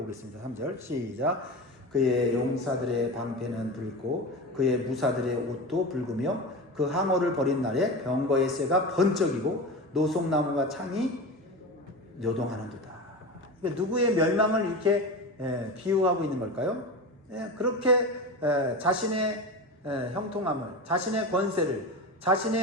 3절 시작. 그의 용사들의 방패는 붉고 그의 무사들의 옷도 붉으며 그 항어를 벌인 날에 병거의 쇠가 번쩍이고 노송나무가 창이 요동하는도다. 누구의 멸망을 이렇게 비유하고 있는 걸까요? 그렇게 자신의 형통함을, 자신의 권세를,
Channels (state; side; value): normal; both; correlation 0.26